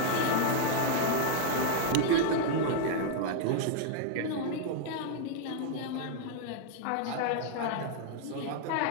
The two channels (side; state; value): both; different; correlation -0.01